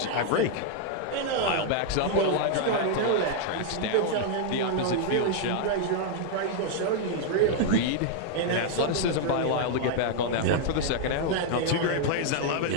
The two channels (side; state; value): both; different; correlation 0.00